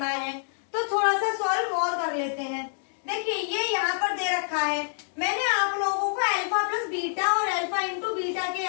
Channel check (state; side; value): silent; right; digital silence